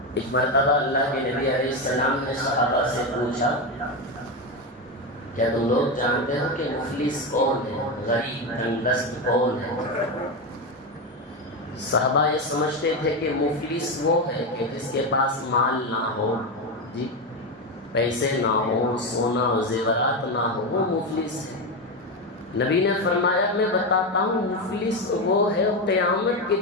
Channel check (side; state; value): both; normal; correlation 0.13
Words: ایک مرتبہ اللہ کے نبی علیہ السلام نے صحابہ سے پوچھا کیا تم لوگ جانتے ہو کہ مفلس کون ہے، غریب تنگدست کون ہے؟ صحابہ یہ سمجھتے تھے کہ مفلس وہ ہے کہ جس کے پاس مال نہ ہو، جی پیسے نہ ہو، سونا و زیورات نہ ہو، وہ مفلس ہے۔ نبی نے فرمایا میں بتاتا ہوں مفلس وہ ہے قیامت کے